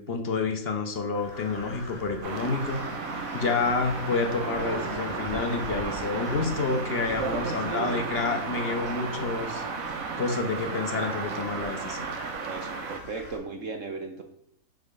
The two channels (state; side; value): late; left; 2.8 ms